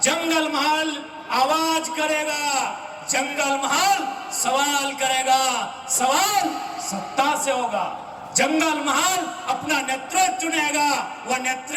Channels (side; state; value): both; identical; correlation 1.00